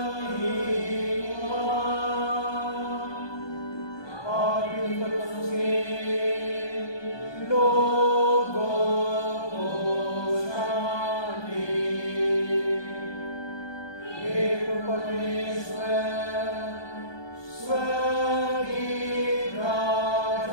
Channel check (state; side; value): late; right; 1.2 ms